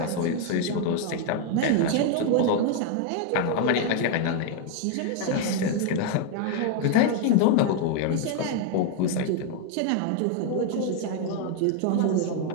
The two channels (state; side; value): different; both; correlation 0.00